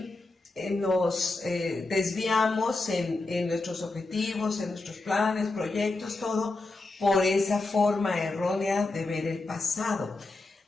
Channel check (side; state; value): right; quieter; 3.2 dB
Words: nos desviamos en nuestros objetivos, en nuestros planes, proyectos, todo por esa forma errónea de ver el pasado.